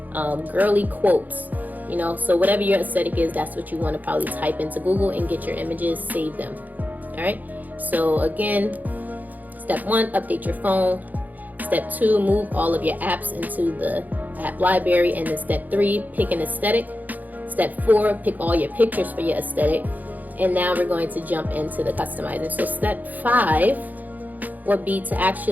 girly quotes, you know. So whatever your aesthetic is, that's what you want to probably type into Google and get your images, save them. All right. So again, step 1, update your phone. Step 2, move all of your apps into the app library. And then step 3, pick an aesthetic. Step 4, pick all your pictures for your aesthetic. And now we're going to jump into the customizing. So step 5 would be to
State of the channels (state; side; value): late; left; 0.082 ms